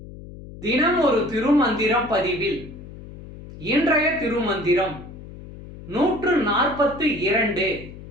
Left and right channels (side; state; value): left; noise; hum, 15 dB below the sound